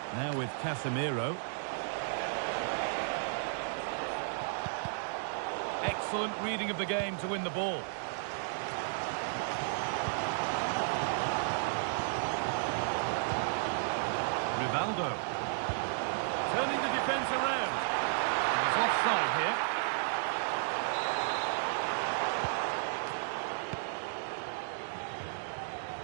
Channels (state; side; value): silent; left; digital silence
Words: Now with Casemiro. Excellent reading of the game to win the ball. Rivaldo. Turning the defence around. And it's offside here.